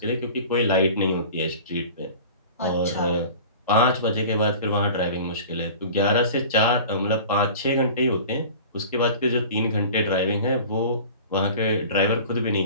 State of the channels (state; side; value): inverted; both; correlation -0.40